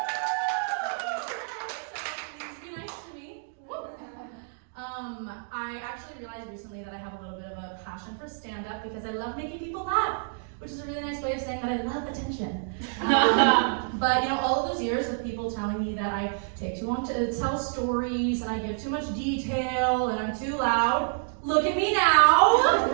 Please be nice to me. I actually realized recently that I have a little bit of a passion for stand-up because I love making people laugh, which is a really nice way of saying that I love attention. But you know, all of those years of people telling me that I take too long to tell stories and I give too much detail and I'm too loud. Look at me now,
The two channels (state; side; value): silent; left; digital silence